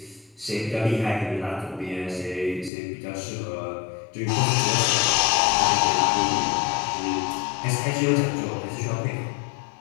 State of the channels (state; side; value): drops out; right; at 2.7 s